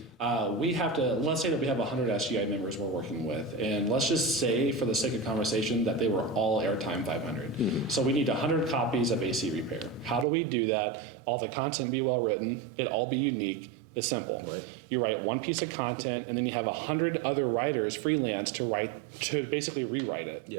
we have to, let's say that we have 100 SGI members we're working with, and let's just say for the sake of conversation that they were all airtime 500. So we need 100 copies of AC repair. How do we do that? All the content be well written, it all be unique. It's simple. Right. You write one piece of content and then you have 100 other writers freelance to basically rewrite it.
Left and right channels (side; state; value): left; drops out; at 10.2 s